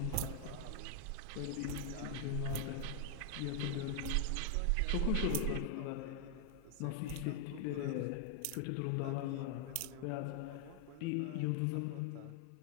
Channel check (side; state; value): both; different; correlation 0.00